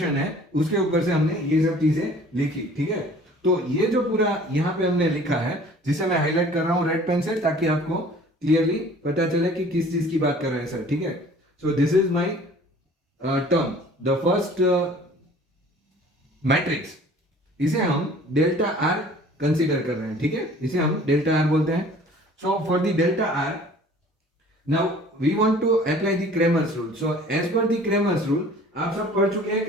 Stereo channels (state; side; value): normal; both; correlation 0.50